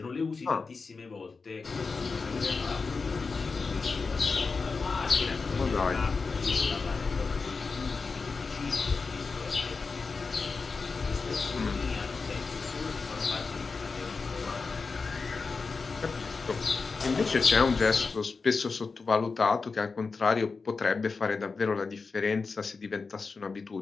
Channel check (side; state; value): right; quieter; 4.5 dB